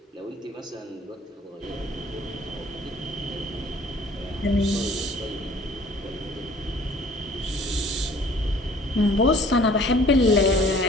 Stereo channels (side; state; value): both; normal; correlation 0.53